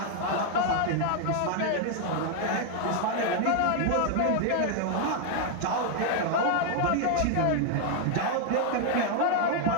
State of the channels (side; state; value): both; different; correlation 0.00